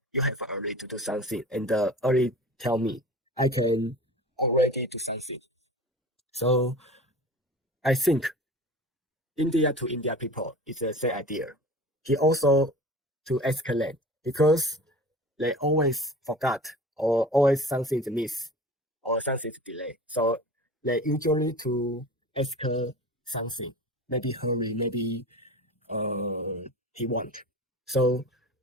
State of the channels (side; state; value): both; normal; correlation 0.38